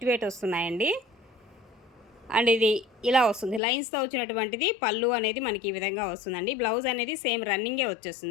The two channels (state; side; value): drops out; right; at 3.6 s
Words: వెయిట్ వస్తున్నాయండి. అండ్ ఇది ఇలా వస్తుంది లైన్స్తో వచ్చినటువంటిది. పళ్ళు అనేది మనకి ఈ విధంగా వస్తుందండి. బ్లౌజ్ అనేది సేమ్ రన్నింగే